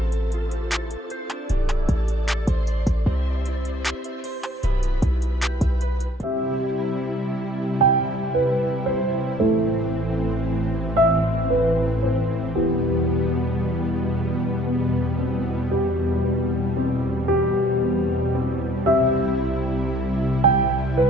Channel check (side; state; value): both; normal; correlation 0.60